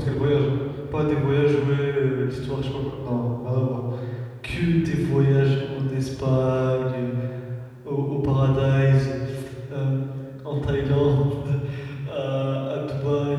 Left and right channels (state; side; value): identical; both; correlation 1.00